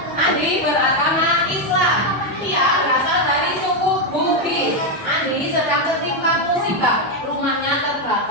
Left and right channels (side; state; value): both; normal; correlation 0.05